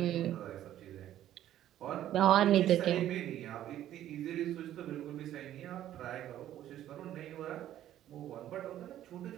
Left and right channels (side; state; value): left; quieter; 12.3 dB